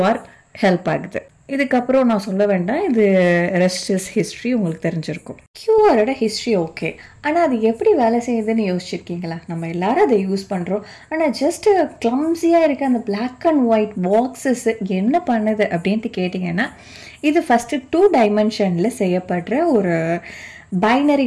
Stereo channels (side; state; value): both; identical; correlation 1.00